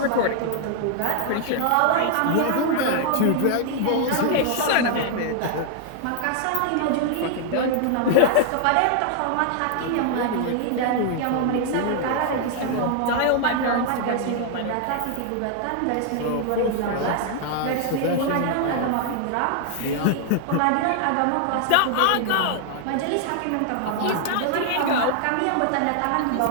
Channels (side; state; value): both; different; correlation 0.00